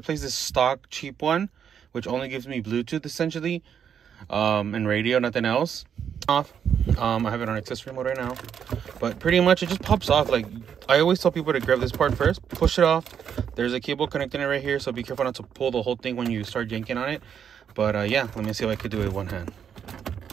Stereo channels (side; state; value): left; quieter; 8.1 dB